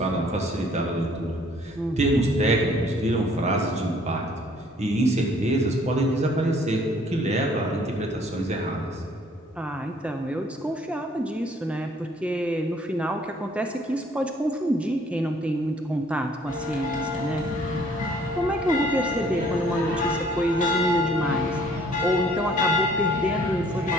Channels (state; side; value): normal; both; correlation 0.59